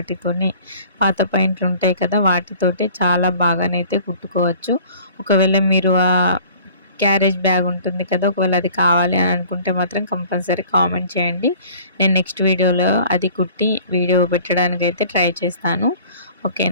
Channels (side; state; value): both; inverted; correlation -0.49